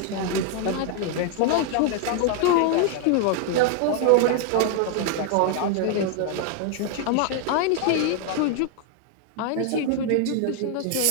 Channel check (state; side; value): different; both; correlation 0.00